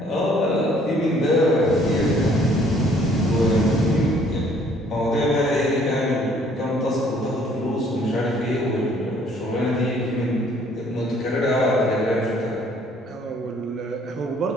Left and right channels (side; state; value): both; normal; correlation 0.61